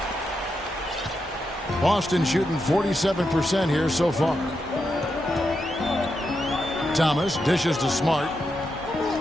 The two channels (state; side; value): normal; both; correlation 0.85